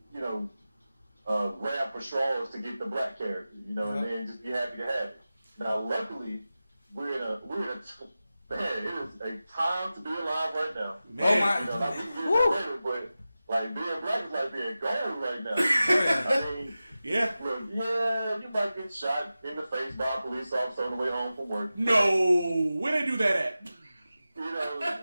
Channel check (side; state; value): both; inverted; correlation -0.94